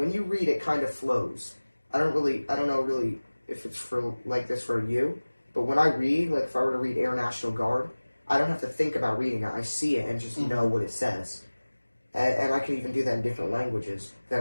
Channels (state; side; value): inverted; both; correlation -1.00